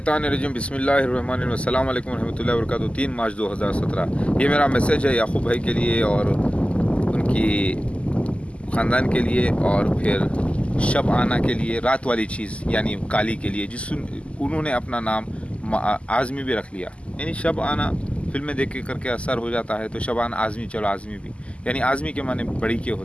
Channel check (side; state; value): right; late; 0.058 ms